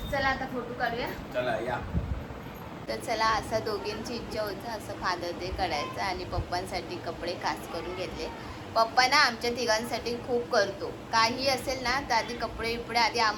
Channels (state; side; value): identical; both; correlation 1.00